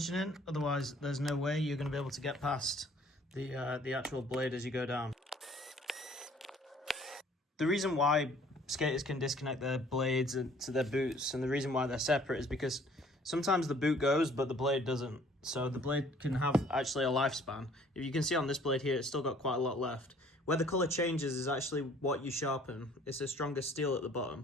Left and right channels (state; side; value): normal; both; correlation 0.57